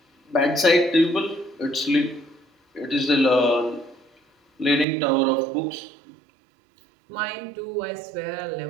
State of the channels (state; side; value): drops out; left; at 4.9 s